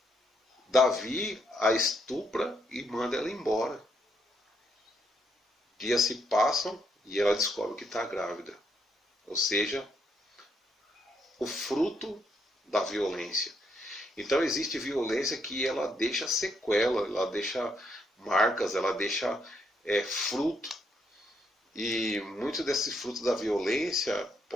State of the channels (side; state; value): both; normal; correlation 0.75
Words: Davi a estupra e manda ela embora. Dias se passam e ela descobre que está grávida. Ou seja, o fruto da violência. Então existe violência que ela deixa sequela, ela deixa marcas, ela deixa fruto. E muito desse fruto da violência